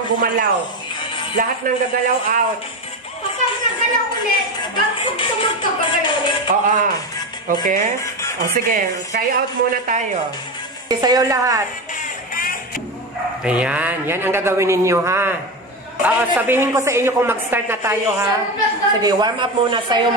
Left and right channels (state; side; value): normal; both; correlation 0.19